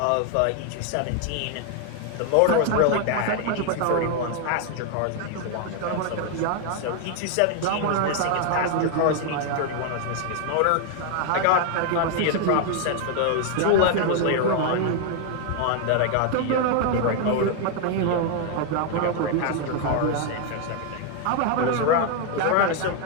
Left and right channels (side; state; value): both; different; correlation 0.01